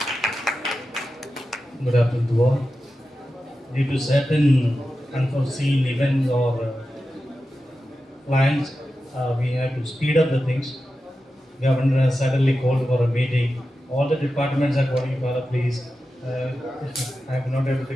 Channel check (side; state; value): both; normal; correlation 0.92